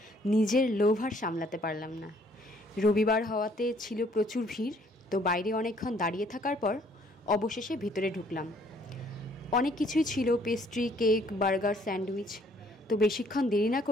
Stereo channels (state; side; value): normal; both; correlation 0.62